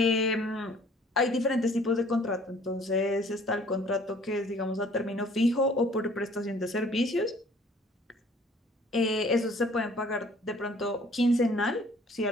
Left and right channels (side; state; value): both; normal; correlation 0.55